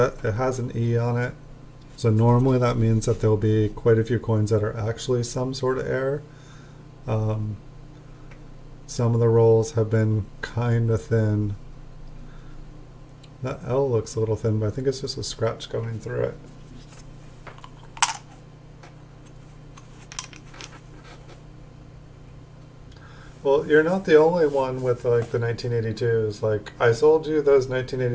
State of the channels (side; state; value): both; identical; correlation 1.00